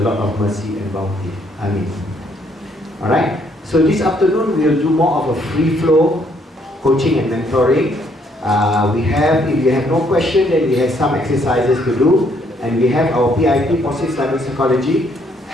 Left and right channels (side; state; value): both; normal; correlation 0.69